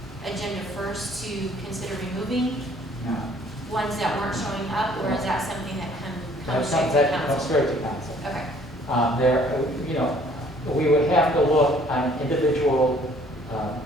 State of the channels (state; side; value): normal; both; correlation 0.58